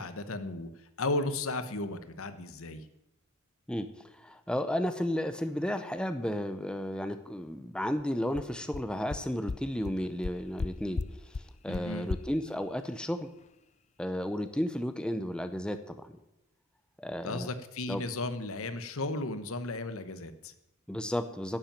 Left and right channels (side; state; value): both; normal; correlation 0.69